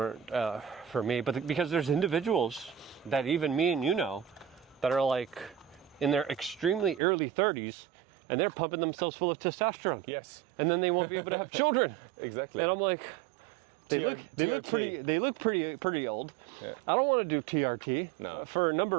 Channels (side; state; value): left; drops out; at 7.0 s